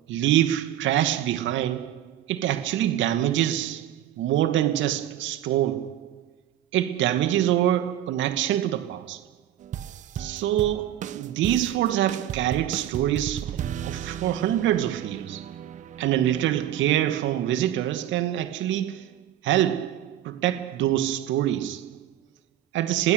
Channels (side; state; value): left; quieter; 12.0 dB